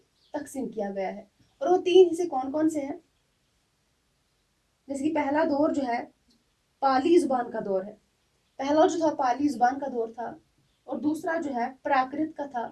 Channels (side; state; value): both; identical; correlation 1.00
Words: तकसीम किया गया है। और वो 3 हिस्से कौन कौन से हैं? जैसे कि पहला दौर जो है पाली जुबान का दौर है, पहला जो था पाली जुबान का दौर था, और दूसरा जो है प्राकृत का था,